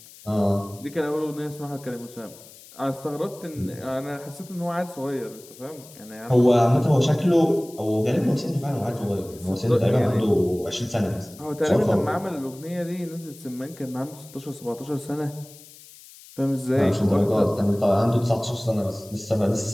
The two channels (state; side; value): noise; left; hiss, 21 dB below the sound